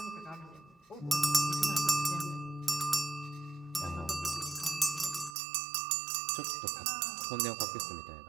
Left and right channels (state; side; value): drops out; left; at 5.4 s